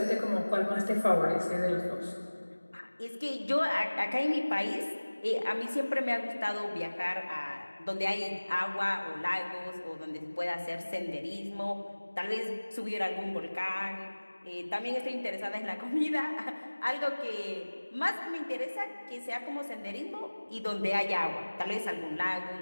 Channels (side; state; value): both; inverted; correlation -1.00